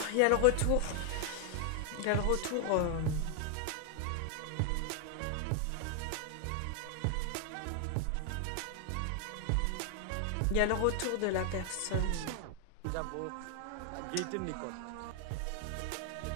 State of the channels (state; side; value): different; both; correlation 0.00